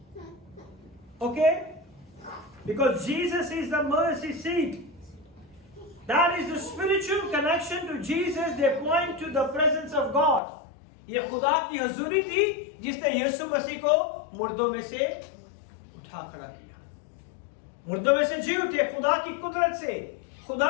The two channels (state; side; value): drops out; right; at 10.4 s